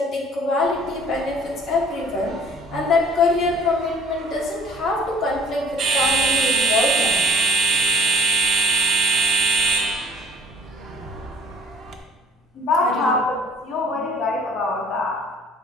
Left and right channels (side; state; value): both; normal; correlation 0.51